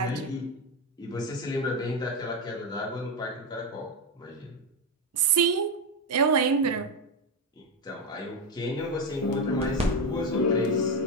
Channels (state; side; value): normal; both; correlation 0.10